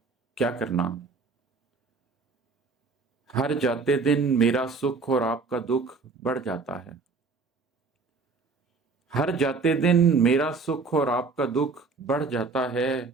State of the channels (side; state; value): left; quieter; 4.3 dB